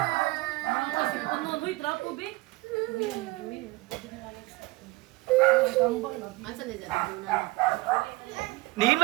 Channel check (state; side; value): quieter; left; 21.4 dB